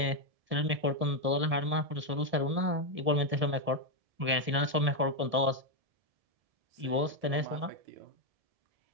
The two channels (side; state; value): left; late; 1.7 ms